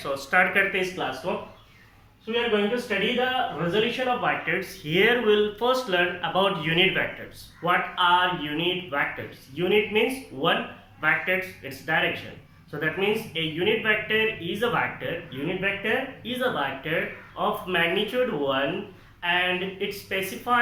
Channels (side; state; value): both; identical; correlation 1.00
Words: so start करते हैं इस class को. So we are going to study the resolution of vectors. Here we'll first learn about unit vectors. What are unit vectors? Unit means one, vectors its direction. So that means a unit vector is a vector. Unit vector is a vector of magnitude 1 and it